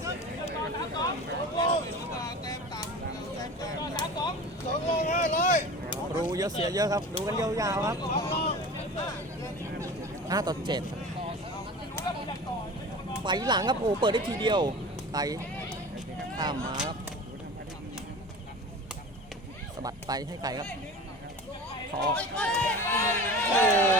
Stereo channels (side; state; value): both; normal; correlation 0.36